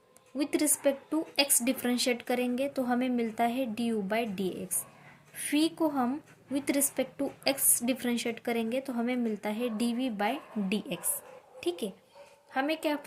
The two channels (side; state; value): both; identical; correlation 1.00